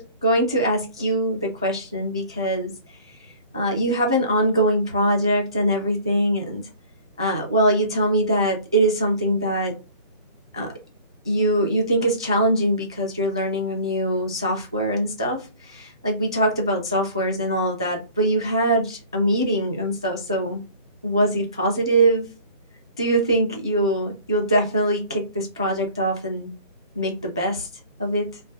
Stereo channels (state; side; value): inverted; both; correlation -0.47